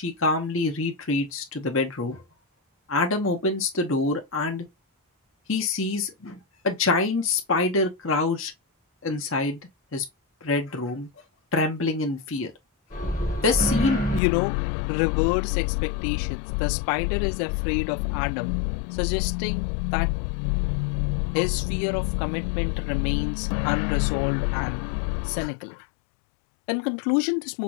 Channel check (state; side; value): drops out; right; at 14.2 s